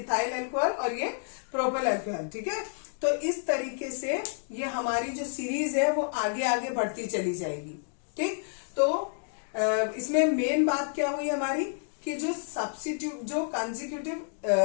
alcohol, और ये प्रोपेल अल्कोहल। ठीक है, तो इस तरीके से ये हमारी जो सीरीज है वो आगे आगे बढ़ती चली जाएगी। ठीक, तो इसमें मेन बात क्या हुई हमारी कि जो सब्स्टिट्यूट, जो कंसेक्यूटिव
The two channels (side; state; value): right; silent; digital silence